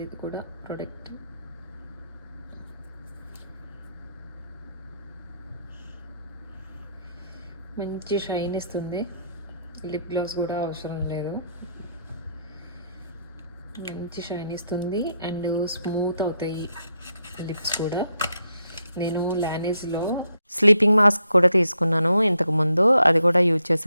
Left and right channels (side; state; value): both; inverted; correlation -0.78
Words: ఇది కూడా ప్రోడక్ట్. మంచి షైన్ ఇస్తుంది. లిప్ గ్లాస్ కూడా అవసరం లేదు, మంచి షైన్ ఇస్తుంది అండ్ స్మూత్ అవుతాయి లిప్స్ కూడా. నేను లానేజ్లో స్లీపింగ్ మాస్క్ కూడా తీసుకున్నాను ఇంతకుముందు, అది కూడా యూజ్